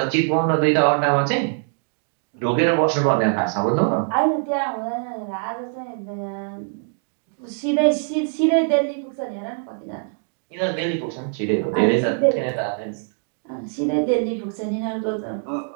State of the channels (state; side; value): silent; left; 58 dB below the other